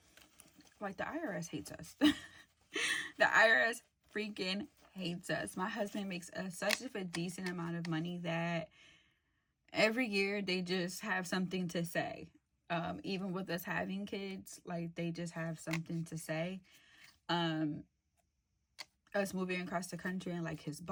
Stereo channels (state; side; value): identical; both; correlation 1.00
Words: like the IRS hates us. The IRS freaking hates us. My husband makes such a decent amount of money that every year they just have something to say. Even with us having kids, like they just have something to say. Us moving across the country and like his